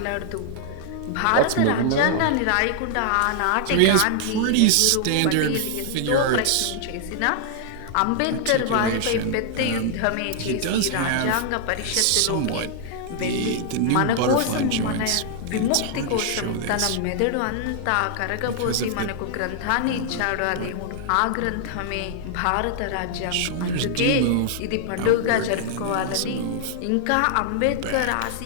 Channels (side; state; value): both; different; correlation -0.01